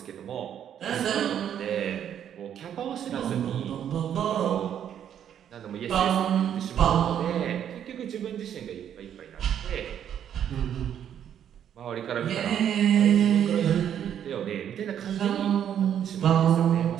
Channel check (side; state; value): left; quieter; 9.5 dB